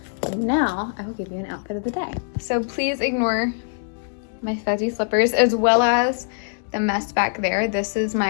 And now I will give you an outfit of the day. So please ignore my fuzzy slippers as well as the mess back there. This is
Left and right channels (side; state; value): right; silent; digital silence